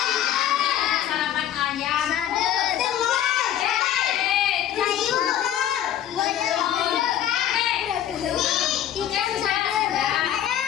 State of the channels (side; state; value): right; quieter; 11.1 dB